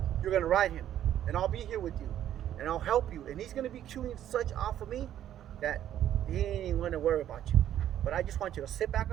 you're gonna ride him, and I'll be here with you, and I'll help you, and he's gonna be chewing such off of me that he ain't even gonna worry about you. But I just want you to sit back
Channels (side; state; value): left; quieter; 11.3 dB